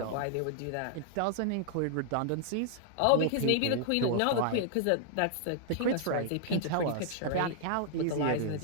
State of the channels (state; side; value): different; both; correlation 0.00